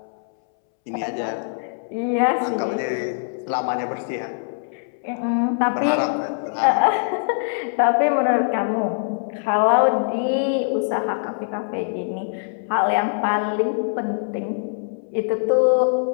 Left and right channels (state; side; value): silent; right; 64 dB below the other